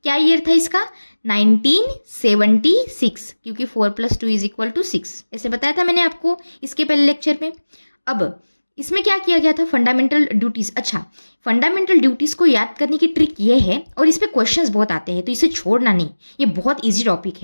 क्या ईयर था इसका? 1976, क्योंकि 4 + 2 = 6। ऐसे बताया था मैंने आपको इसके पहले लेक्चर में। अब इसमें क्या किया गया था, फंडामेंटल ड्यूटीज़। अच्छा, फंडामेंटल ड्यूटीज़ को याद करने की ट्रिक ये है, और इस पे क्वेश्चंस बहुत आते हैं तो इसे छोड़ना नहीं, ये बहुत इजी टॉपिक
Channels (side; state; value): both; inverted; correlation -1.00